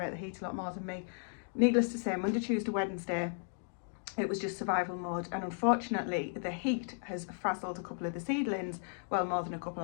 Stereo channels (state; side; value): silent; right; 54 dB below the other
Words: the heat a lot more than me. Needless to say, Monday, Tuesday, Wednesday, it was just survival mode, and unfortunately the heat has frazzled a couple of the seedlings. Well, more than a couple.